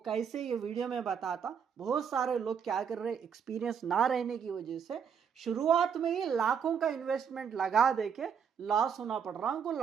ये वीडियो में बताता। बहुत सारे लोग क्या कर रहे, एक्सपीरियंस ना रहने की वजह से शुरुआत में ही लाखों का इन्वेस्टमेंट लगा देके लॉस होना पड़ रहा उनको,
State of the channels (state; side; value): quieter; left; 7.3 dB